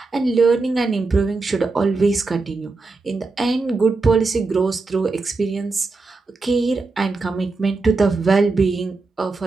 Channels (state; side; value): quieter; left; 3.8 dB